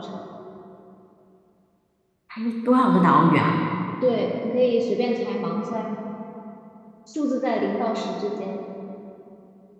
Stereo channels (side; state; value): both; identical; correlation 1.00